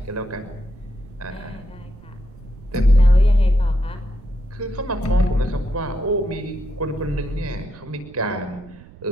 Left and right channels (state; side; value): noise; right; rumble, 20 dB below the sound